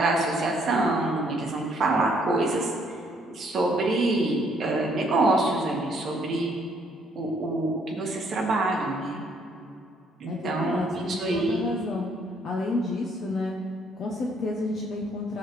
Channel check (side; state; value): both; normal; correlation 0.67